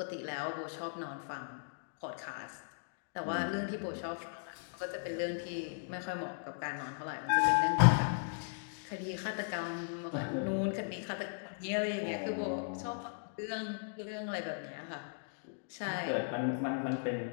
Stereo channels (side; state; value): right; silent; digital silence